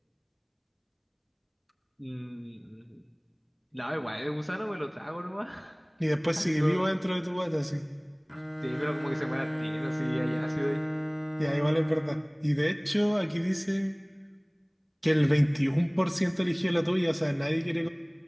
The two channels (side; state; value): both; identical; correlation 1.00